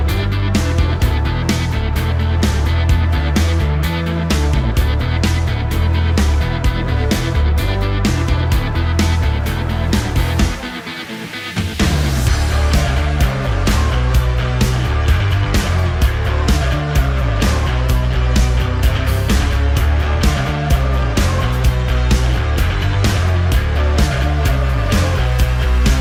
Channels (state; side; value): identical; both; correlation 1.00